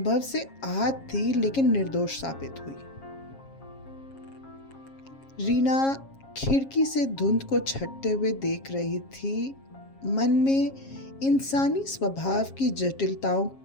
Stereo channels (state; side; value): late; right; 7.4 ms